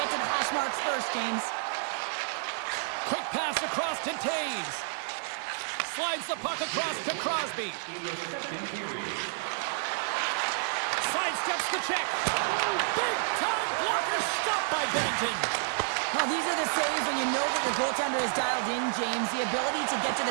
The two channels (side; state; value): left; silent; digital silence